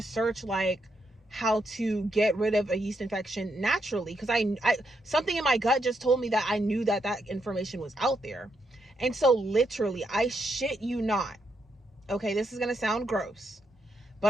search like how to get rid of a yeast infection naturally, because I something in my gut just told me that I knew that that information was out there. And so literally, I shit you not, okay, this is gonna sound gross,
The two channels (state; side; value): normal; both; correlation 0.80